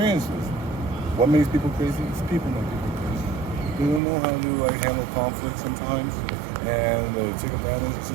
What makes people crazy? It's people make people crazy. They don't know how to handle conflict sometimes, and they take advantage of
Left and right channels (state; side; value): drops out; left; at 4.0 s